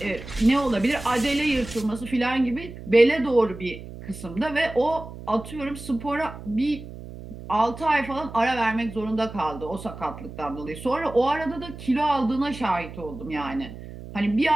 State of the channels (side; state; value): right; noise; hum, 13 dB below the sound